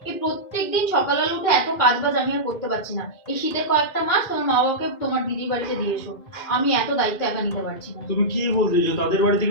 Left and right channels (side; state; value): right; late; 2.4 ms